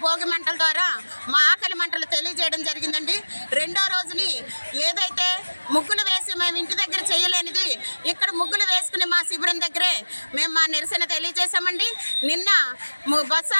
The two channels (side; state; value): both; inverted; correlation -1.00